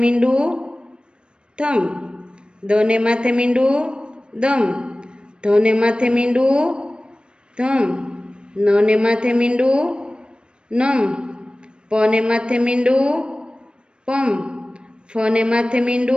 થમ. દને માથે મીંડું દમ. ધને માથે મીંડું ધમ. નને માથે મીંડું નમ. પને માથે મીંડું પમ. ફને માથે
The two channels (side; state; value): left; late; 0.054 ms